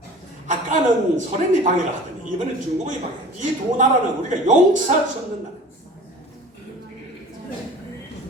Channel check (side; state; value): both; normal; correlation 0.42